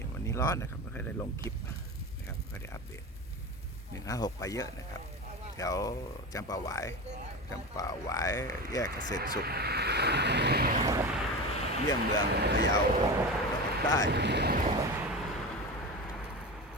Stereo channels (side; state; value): both; normal; correlation 0.25